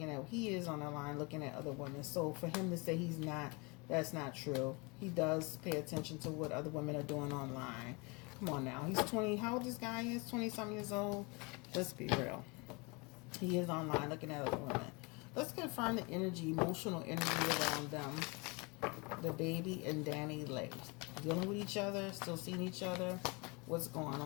he is on the line looking at other women. So for him to say he's not, that's not true. He does pay attention to what other women are doing online. Come on now. He's 20. How old this guy is? 20-something years old. Let's be real. He is online looking at other women. Let's confirm the emotional energy around them. The baby and Danny Lay. Dealing with each other, still seeing each other. What's going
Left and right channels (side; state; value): right; quieter; 28.9 dB